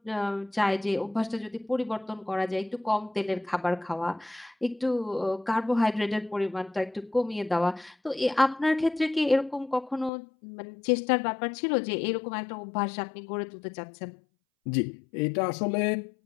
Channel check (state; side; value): drops out; right; at 10.1 s